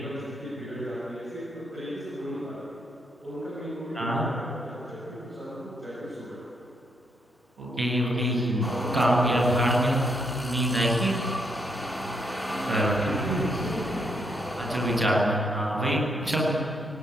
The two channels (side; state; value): both; normal; correlation 0.75